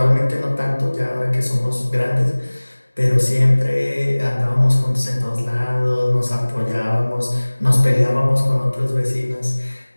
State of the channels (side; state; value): both; inverted; correlation -1.00